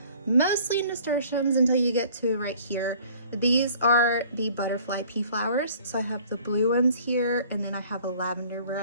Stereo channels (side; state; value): both; inverted; correlation -0.52